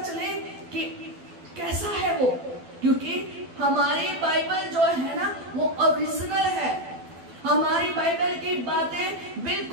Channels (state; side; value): late; left; 12 ms